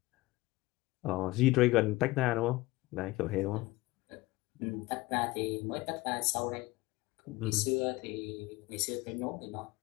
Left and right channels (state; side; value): quieter; right; 20.2 dB